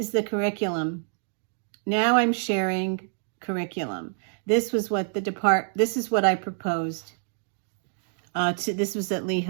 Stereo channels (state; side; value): silent; left; digital silence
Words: the curriculum. Now I'm sharing curriculum. This was what this is what I proposed. This was at